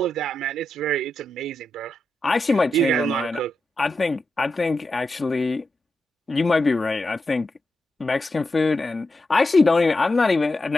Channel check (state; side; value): normal; both; correlation 0.88